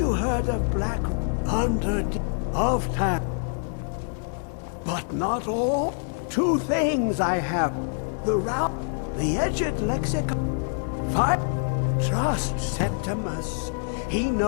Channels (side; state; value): right; silent; 61 dB below the other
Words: heard of Black Under of Time? But not all. Two things I have. The route, the edged lexicon. Five. Trust Septimus. He